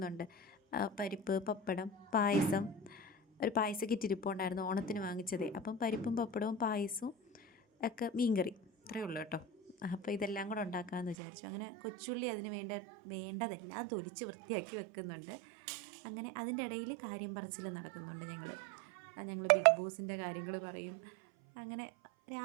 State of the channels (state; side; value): drops out; left; at 11.2 s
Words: പരിപ്പ്, പപ്പടം, പായസം. ഒരു പായസ കിറ്റ് ഇരിപ്പുണ്ടായിരുന്നു, ഓണത്തിന് വാങ്ങിച്ചതേ. അപ്പം പരിപ്പും പപ്പടവും പായസവും ഒക്കെ മീൻകറി ഇത്രയേ ഉള്ളൂ കേട്ടോ. അപ്പോൾ ഇതെല്ലാം കൂടെ ഉണ്ടാക്കാമെന്ന് വിചാരിച്ചു. അങ്ങനെ കൊച്ചുള്ളി അതിന് വേണ്ടതെല്ലാം തൊലിച്ച് വൃത്തിയാക്കി വെക്കുന്നുണ്ട്. അങ്ങനെ അതിൻ്റെ ഇടയിൽ കാര്യം പറച്ചിൽ നടക്കുന്നുണ്ട്. ഞങ്ങൾ ബിഗ് ബോസിൻ്റെ കാര്യങ്ങൾ പറയും. അങ്ങനെ